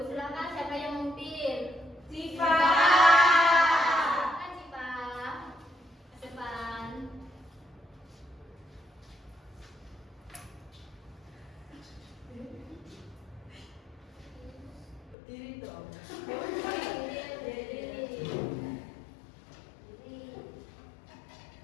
Silakan siapa yang memimpin? Siva. Silakan Cipa. Ke depan. Berdiri dong.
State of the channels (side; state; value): right; drops out; at 15.2 s